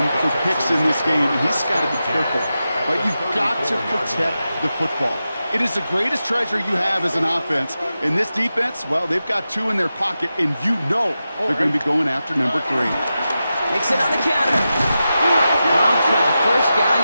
for picks in this game, and he's got to be careful. But you've got to protect the football. It is the greatest treasure you have as an offense. In this defense, well, they've got 2 in their pocket, and you know they're going to be going after number 3. Mixon on the counter. Romped by the first guy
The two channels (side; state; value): both; inverted; correlation -0.91